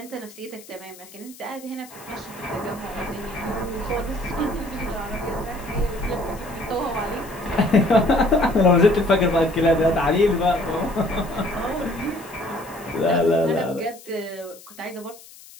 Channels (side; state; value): left; noise; hiss, 20 dB below the sound